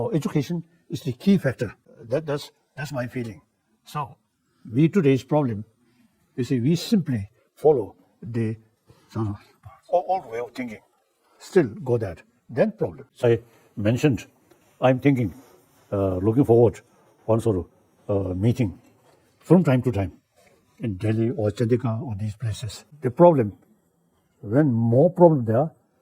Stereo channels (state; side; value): identical; both; correlation 1.00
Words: education is the key factor. That's my feeling. So today's problem, you see, we simply follow the sort of old way of thinking. Still go that. Then problem. I mentioned, I'm thinking, looking forward one sort of meeting from time to time in Delhi or Chandigarh or these places. The problem, when more problem there,